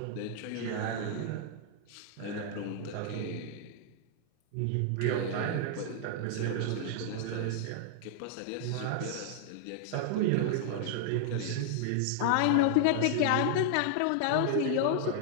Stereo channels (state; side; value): different; both; correlation 0.00